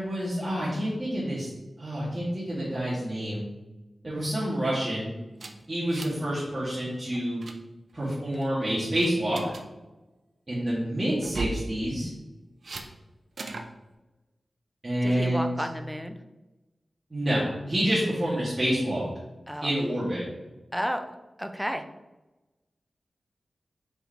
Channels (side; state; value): both; normal; correlation 0.95